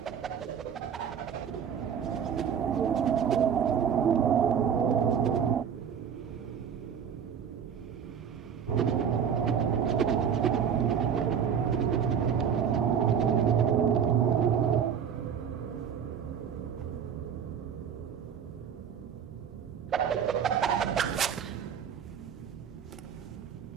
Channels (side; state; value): left; quieter; 7.8 dB